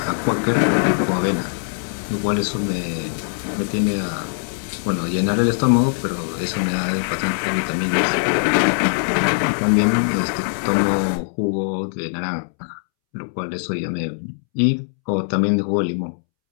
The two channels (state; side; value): silent; right; 65 dB below the other